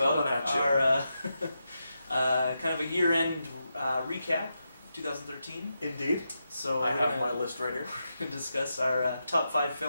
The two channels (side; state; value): both; inverted; correlation -0.86